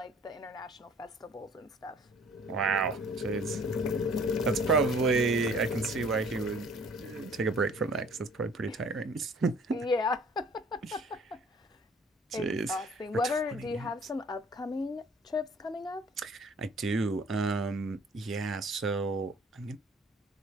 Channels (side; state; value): both; normal; correlation 0.53